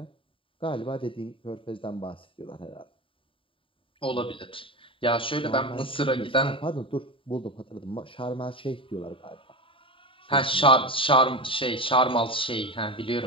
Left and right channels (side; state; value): right; late; 0.25 ms